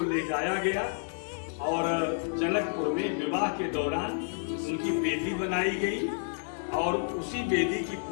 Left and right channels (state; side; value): silent; right; digital silence